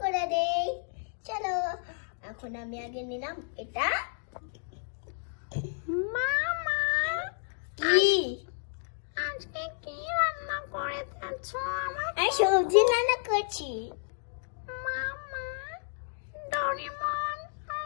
করে দেই, চলো। এখন আমি আগে নিলাম এটা। মামা কি আজকে কি রান্না করেছো? আমি সবজি রান্না করছি। মামা, ডরিমন আর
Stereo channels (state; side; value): silent; right; digital silence